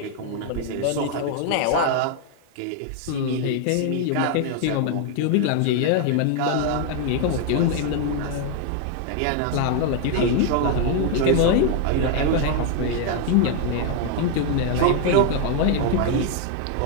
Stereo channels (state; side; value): different; both; correlation 0.01